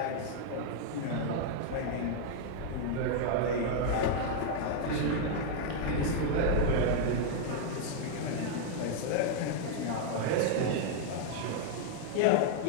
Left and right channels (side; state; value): both; different; correlation 0.00